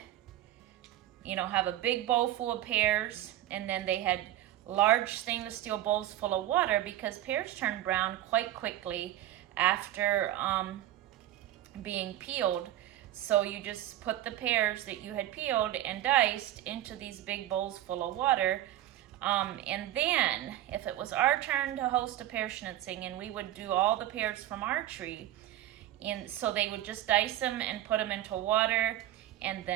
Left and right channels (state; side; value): quieter; left; 13.6 dB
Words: have a big bowl full of pears, and then they had large stainless steel bowls full of water because pears turn brown quite quickly after being peeled. So you just put the pears that you had peeled and diced into these big bowls full of water. And then if it was our turn to host a pear schnitzing, and we would do all the pears from our tree, And so they would just dice them and put them into water. And